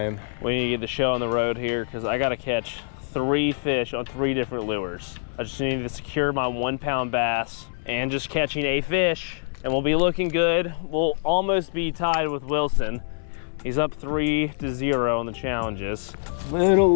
We need to get the show on the road here because I gotta catch 3 fish on 3 different lures. I just need to secure my 1-pound bass and just catching a fish, and we'll be looking good. We'll almost be tied with Wilson. He's up 3-0 on the challenges. Little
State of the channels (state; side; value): silent; right; 62 dB below the other